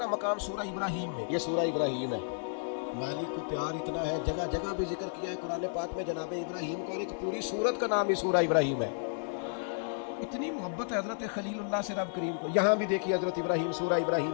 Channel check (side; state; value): right; silent; digital silence